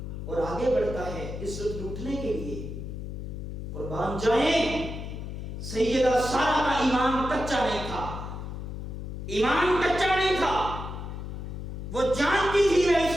اور آگے بڑھتا ہے عزت لوٹنے کے لیے۔ قربان جائیں، سیدہ سارہ کا ایمان کچا نہیں تھا، ایمان کچا نہیں تھا۔ وہ جانتی تھی میں اس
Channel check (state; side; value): noise; left; hum, 7 dB below the sound